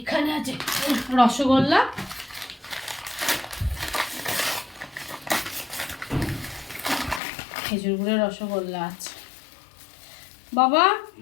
আছে রসগোল্লা, খেজুর গুড়ের রসগোল্লা আছে। বাবা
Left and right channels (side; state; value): right; drops out; at 7.2 s